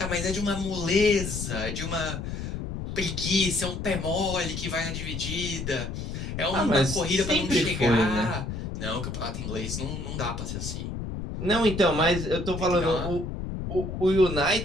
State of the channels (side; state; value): left; noise; rumble, 5 dB below the sound